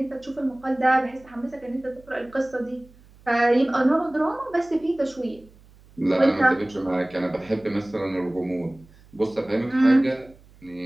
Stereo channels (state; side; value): noise; right; hum, 26 dB below the sound